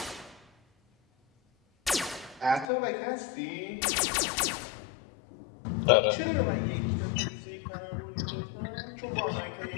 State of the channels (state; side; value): drops out; right; at 2.7 s